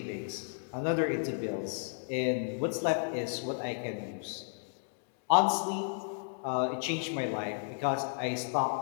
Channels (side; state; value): right; silent; digital silence